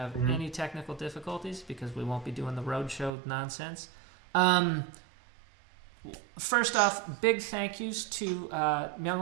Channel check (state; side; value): drops out; left; at 3.1 s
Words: any technical difficulties because we won't be doing the roadshow nonsense. First off, big thank yous to